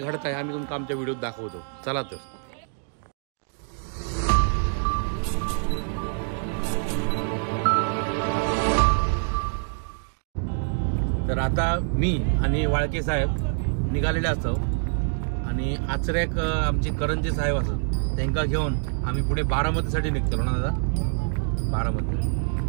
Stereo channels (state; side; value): silent; left; 56 dB below the other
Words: घडत आहे आम्ही तुमका आमच्या व्हिडिओत दाखवतो. चला तर आता मी आणि वाळके साहेब निघालेले असतो आणि आचरेक आमचे करंजे साहेब असत त्यांना घेऊन आम्ही पुढे बारामतीसाठी निघतो ना दादा. बारामती